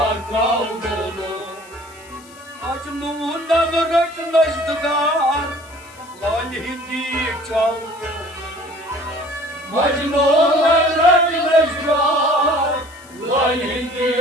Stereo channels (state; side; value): noise; left; hiss, 24 dB below the sound